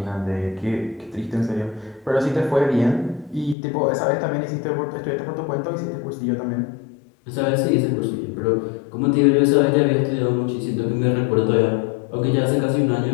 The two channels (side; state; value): right; drops out; at 3.6 s